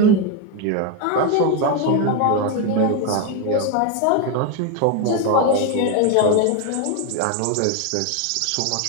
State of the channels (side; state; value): both; different; correlation 0.02